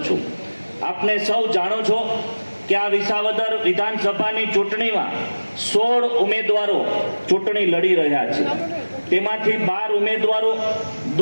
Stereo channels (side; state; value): both; inverted; correlation -1.00